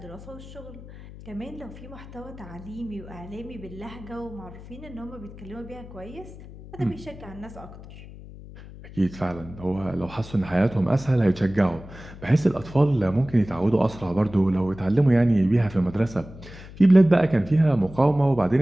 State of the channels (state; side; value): noise; left; hum, 16 dB below the sound